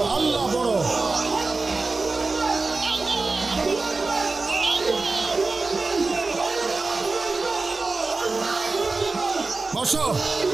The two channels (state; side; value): quieter; left; 3.7 dB